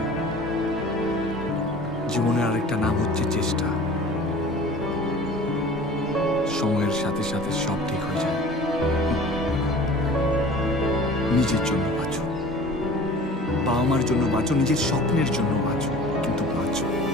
জীবনের আরেকটা নাম হচ্ছে চেষ্টা। সময়ের সাথে সাথে সব ঠিক হয়ে যায়। নিজের জন্য বাঁচো, বাবা মার জন্য বাঁচো, নিজের স্বপ্নের জন্য বাঁচো, কিন্তু বাঁচো।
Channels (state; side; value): normal; both; correlation 0.44